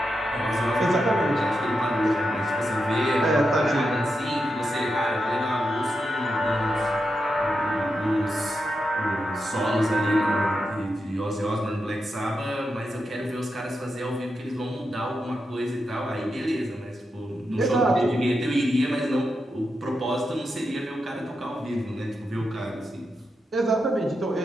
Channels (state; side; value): normal; both; correlation 0.86